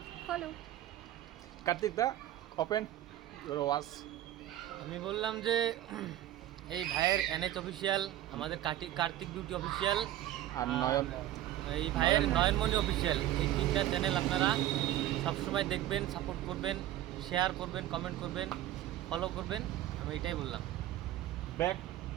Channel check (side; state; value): left; quieter; 13.4 dB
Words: follow. Kartik দা, ওপেন ইউর ওয়াচ। আমি বললাম যে এই ভাইয়ের NH অফিসিয়াল, আমাদের কার্তিক বিউটি অফিসিয়াল আর নয়ন, এই ভাইয়ের নয়নমণি অফিসিয়াল, এই তিনটা চ্যানেল আপনারা সবসময় দেখবেন, সাপোর্ট করবেন, শেয়ার করবেন, কমেন্ট করবেন, ফলো করবেন। আমি এটাই বললাম। ব্যাক